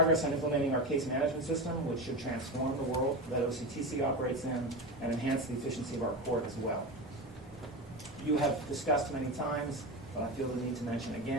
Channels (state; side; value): normal; both; correlation 0.21